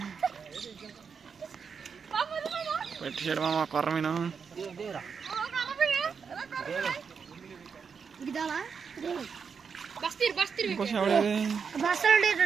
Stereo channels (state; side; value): quieter; left; 6.1 dB